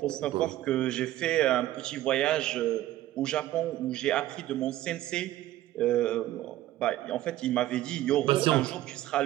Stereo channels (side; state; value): left; quieter; 14.6 dB